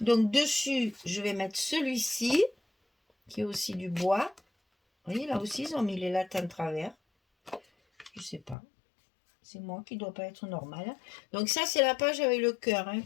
Donc dessus, je vais mettre celui-ci, qui est aussi du bois. Vous voyez, là aussi, ils ont mis les lattes en travers. Je sais pas. C'est moi qui ne dois pas être normal. Donc ça, c'est la page avec le cœur hein,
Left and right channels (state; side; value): drops out; right; at 8.6 s